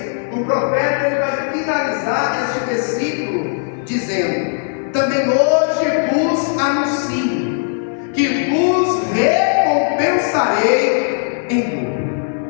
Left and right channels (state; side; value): silent; right; digital silence